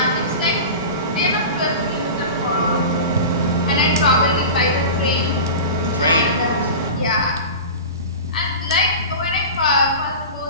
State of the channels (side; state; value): both; inverted; correlation -0.31